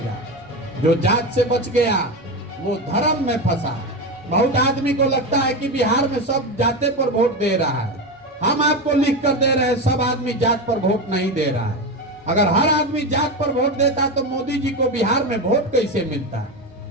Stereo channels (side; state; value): both; normal; correlation 0.18